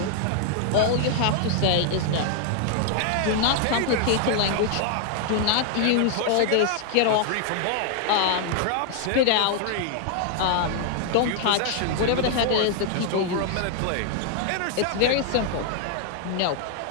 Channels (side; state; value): both; different; correlation 0.00